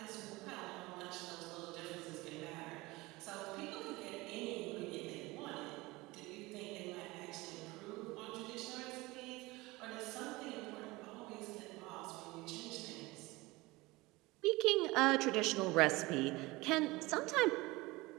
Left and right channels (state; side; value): quieter; left; 21.7 dB